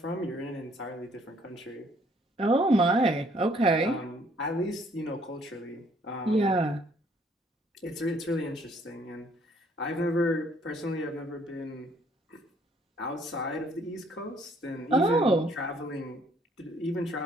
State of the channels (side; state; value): both; normal; correlation 0.64